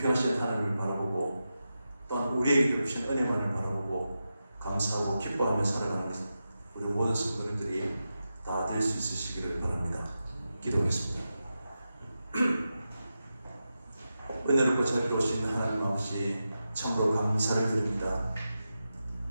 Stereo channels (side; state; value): both; inverted; correlation -0.90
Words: 하나님을 바라보고 또한 우리에게 베푸신 은혜만을 바라보고 감사하고 기뻐하며 살아가는 것은 우리 모든 성도님들이 다 될 수 있으시기를 바랍니다. 기도하겠습니다. 은혜롭고 자비로우신 하나님 아버지 참으로 감사를 드립니다.